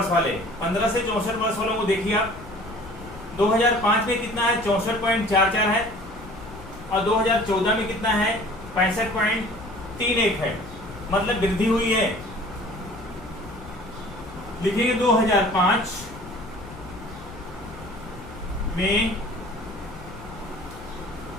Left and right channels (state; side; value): noise; left; rumble, 16 dB below the sound